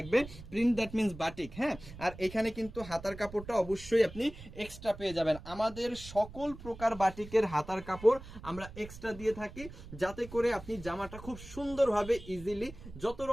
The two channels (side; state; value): right; noise; rumble, 15 dB below the sound